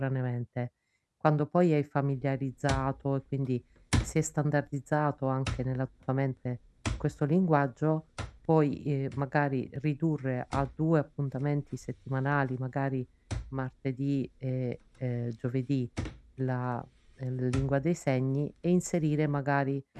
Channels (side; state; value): both; identical; correlation 1.00